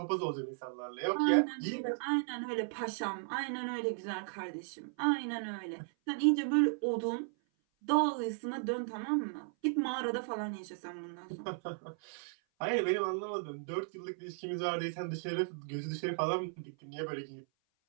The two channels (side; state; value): left; silent; 54 dB below the other